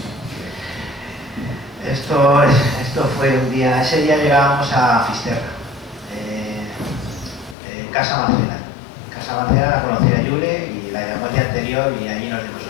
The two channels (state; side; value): drops out; right; at 7.6 s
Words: Esto fue un día, ese día llegábamos a Fisterra, Casa Macera. Casa Macera la conocía Yule y la llamó el día anterior y allí nos dimos